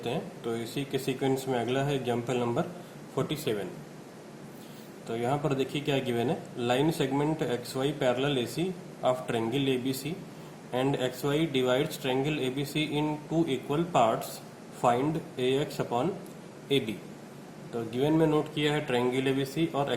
हैं। तो इसी के सीक्वेंस में अगला है एग्जाम्पल नंबर 47। तो यहाँ पर देखिए क्या गिवन है। Line segment X Y parallel A C of triangle A B C and X Y divides triangle A B C in two equal parts, find A X upon A B. तो given में note किया है triangle A B C और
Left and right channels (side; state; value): both; identical; correlation 1.00